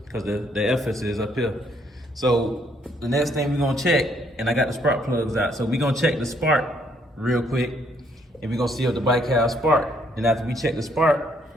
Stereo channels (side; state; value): both; normal; correlation 0.69